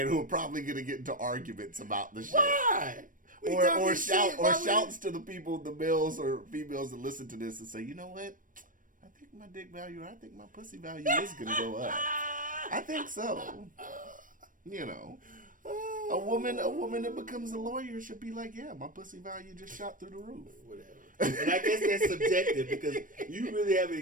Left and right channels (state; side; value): late; left; 0.39 ms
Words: who are probably going to get into arguments about the shit. Why? Or shouts to the people, the males or females that listen to this and say, you know what? I think my dick value, I think my pussy value is going to go up. I think so. You know. A woman that becomes a lawyer should be like, yeah, my pussy value just shot through the roof. Whatever. And I guess that's subjective because you really haven't